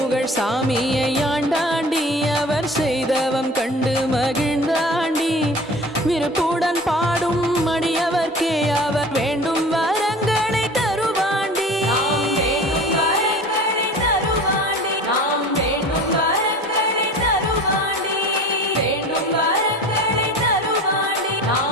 சாமியை ஆண்டாண்டி அவர் செய்தவம் கண்டு மகிழ்ந்தாண்டி விருப்புடன் பாடும் மடியவர்க்கே அவர் வேண்டும் வரங்களை தருவாண்டி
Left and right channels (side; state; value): both; normal; correlation 0.40